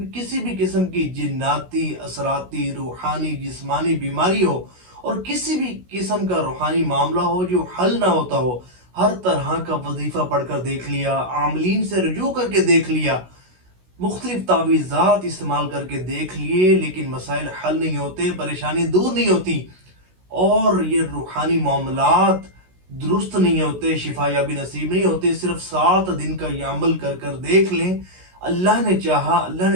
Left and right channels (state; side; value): late; left; 16 ms